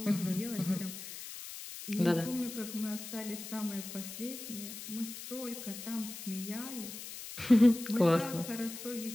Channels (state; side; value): noise; left; hiss, 10 dB below the sound